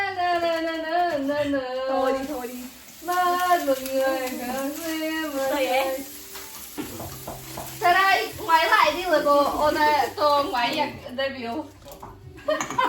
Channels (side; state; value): both; identical; correlation 1.00